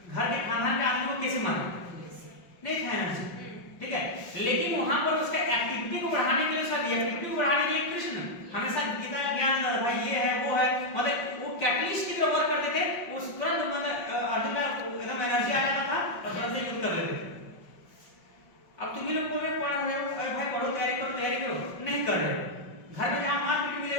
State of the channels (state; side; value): late; right; 5.6 ms